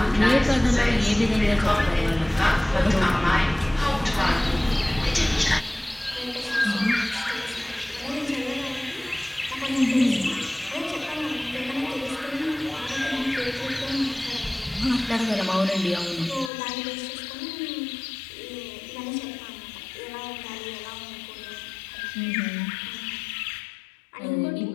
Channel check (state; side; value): drops out; right; at 16.5 s